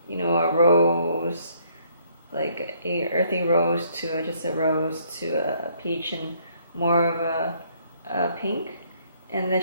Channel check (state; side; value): inverted; both; correlation -0.66